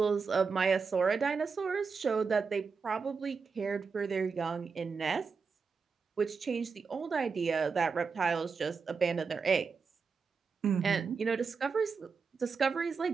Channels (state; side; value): quieter; left; 5.2 dB